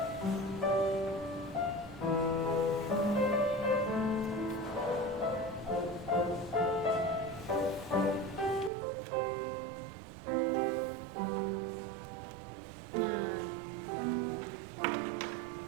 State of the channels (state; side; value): drops out; left; at 8.7 s